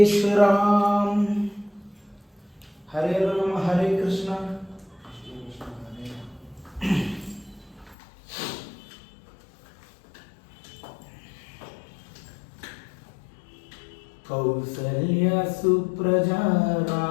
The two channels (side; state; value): right; drops out; at 8.0 s